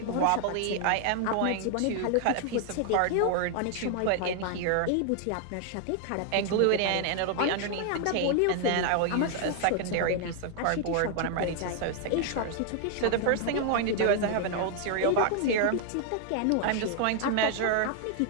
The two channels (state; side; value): different; both; correlation 0.00